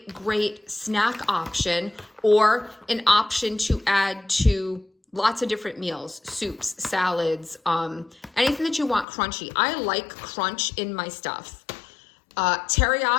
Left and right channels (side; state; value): right; drops out; at 9.1 s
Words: great snack option, or an option to add to lots of different meals, soups, salads, anything that you want crunchy. I like crunch in my stuff.